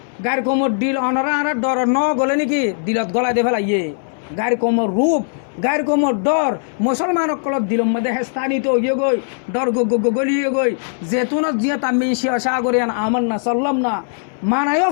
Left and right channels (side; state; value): right; silent; 62 dB below the other